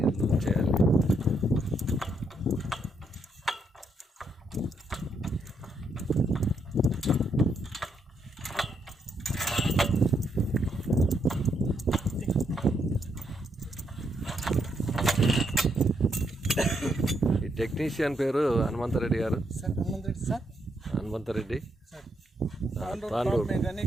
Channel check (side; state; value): both; normal; correlation 0.77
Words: లూజ్ చేయాలి. ఈ టెక్నీషియన్ పేరు హనుమంతరెడ్డి గారు. హనుమంతరెడ్డి